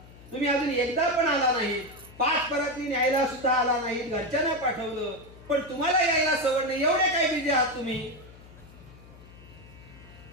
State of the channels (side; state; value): left; noise; hum, 21 dB below the sound